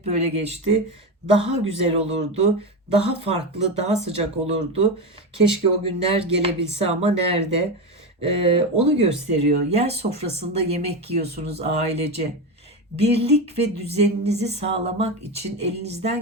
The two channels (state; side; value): normal; both; correlation 0.17